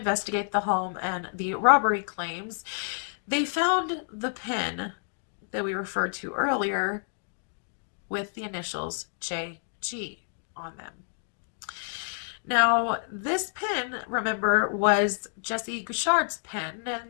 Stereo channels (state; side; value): silent; right; digital silence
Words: the home and the robbery claims, they found the pen that we referred to earlier with the initials JG on them. Now, this pen, remember, was Jesse Gouchard's pen,